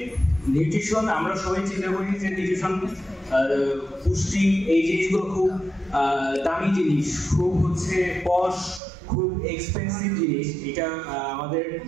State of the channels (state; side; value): drops out; left; at 8.8 s